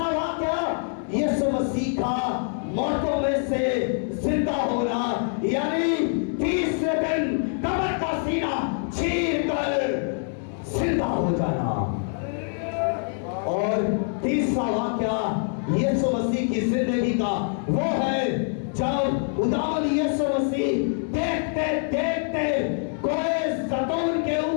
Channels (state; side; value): silent; right; 62 dB below the other